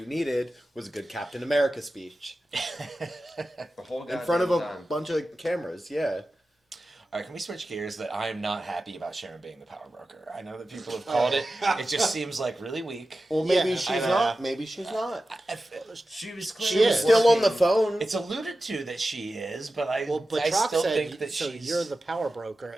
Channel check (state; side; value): normal; both; correlation 0.94